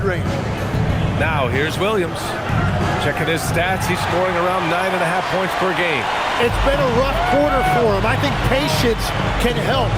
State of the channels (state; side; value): identical; both; correlation 1.00